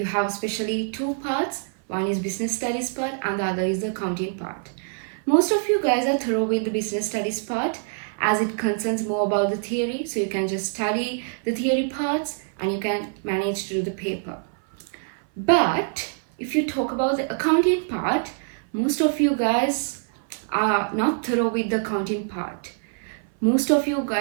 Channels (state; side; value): silent; left; 57 dB below the other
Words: have especially two parts. One is business studies part and the other is the accounting part. Most of you guys are thorough with the business studies part as it concerns more about the theory. So you can just study the theory parts and you can manage to do the paper. But if you talk about the accounting part, most of you guys are not thorough with the accounting part. Most of you